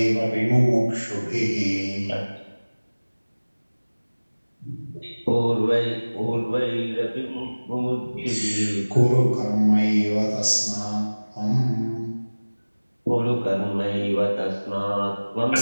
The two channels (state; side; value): inverted; both; correlation -1.00